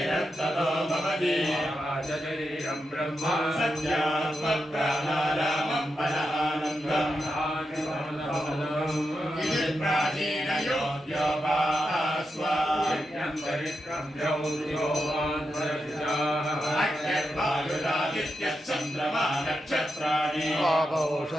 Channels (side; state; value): both; normal; correlation 0.87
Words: ततो भवति शरीरं ब्रह्म सत्यात्मप्राणारामं बलानन्दम् इति प्राचीनयोग्योपास्वाद्यन्तरिक्षं चन्द्रमा नक्षत्राणि